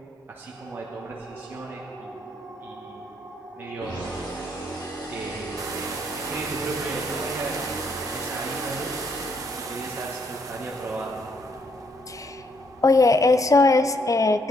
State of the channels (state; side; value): normal; both; correlation 0.72